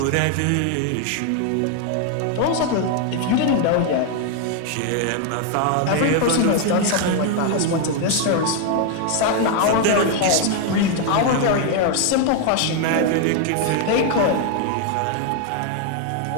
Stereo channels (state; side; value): different; both; correlation 0.01